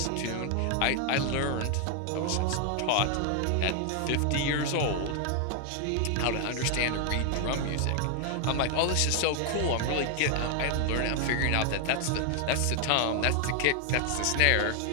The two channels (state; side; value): different; both; correlation 0.00